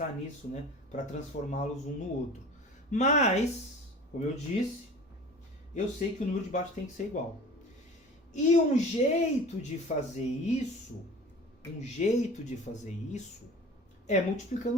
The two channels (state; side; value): normal; both; correlation 0.40